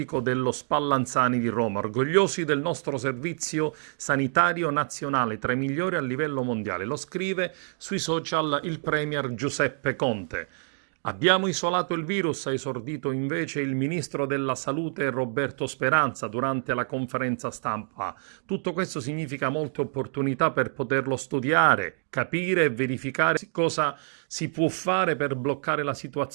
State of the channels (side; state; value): left; silent; 60 dB below the other